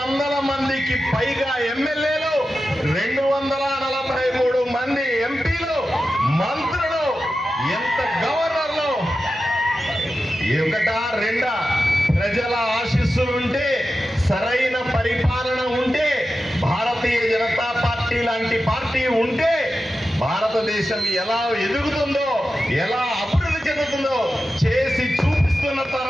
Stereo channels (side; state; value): both; normal; correlation 0.92